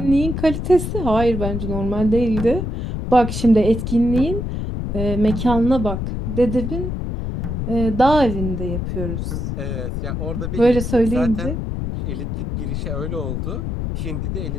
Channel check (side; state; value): left; noise; rumble, 3 dB below the sound